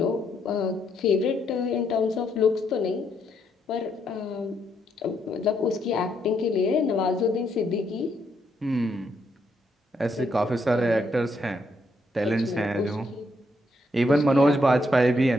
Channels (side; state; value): both; normal; correlation 0.75